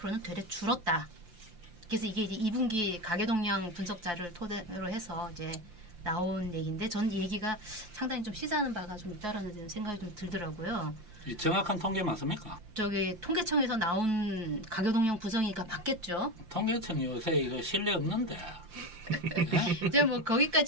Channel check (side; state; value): left; late; 5.8 ms